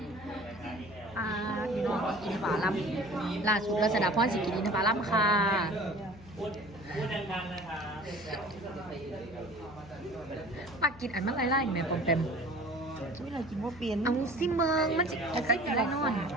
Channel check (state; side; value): noise; left; hum, 19 dB below the sound